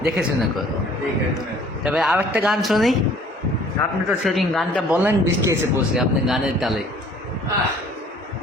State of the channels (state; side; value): normal; both; correlation 0.54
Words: দেখে শুনে করো। দেখে শুনে। তবে আর একটা গান শুনি। আপনি তো সেদিন গানটা বললেন, বৃষ্টি এসে পড়ছে আপনি গানের তালে। আহ